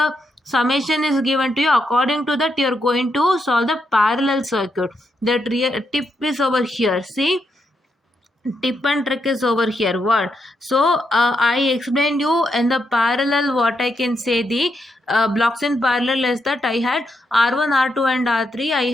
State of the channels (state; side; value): normal; both; correlation 0.81